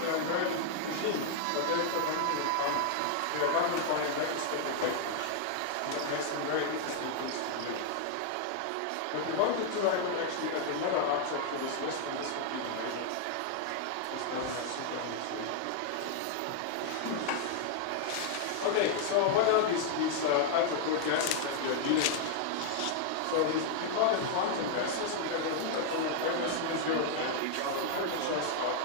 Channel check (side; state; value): both; different; correlation 0.00